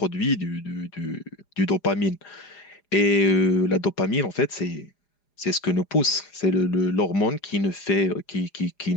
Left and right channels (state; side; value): late; right; 4.9 ms